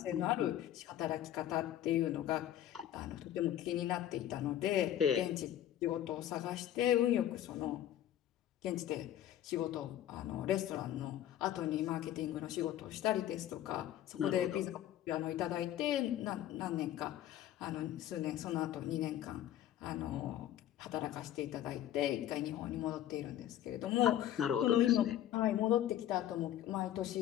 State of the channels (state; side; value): quieter; right; 11.9 dB